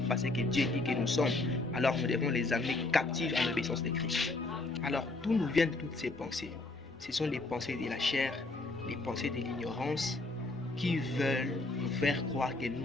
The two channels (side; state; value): right; quieter; 3.1 dB